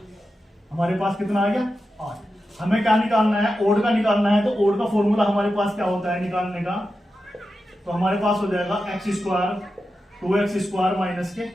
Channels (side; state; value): both; normal; correlation 0.90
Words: हमारे पास कितना आ गया, 8। हमें क्या निकालना है, ओड का निकालना है। तो ओड का फॉर्मूला हमारे पास क्या होता है निकालने का, तो हमारे पास हो जाएगा x square 2x square minus के